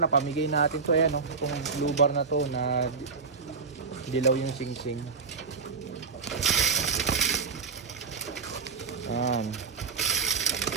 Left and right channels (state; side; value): quieter; left; 5.1 dB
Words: natin to. Ayan o, itong blue bar na to na dilaw yung singsing. Ayan.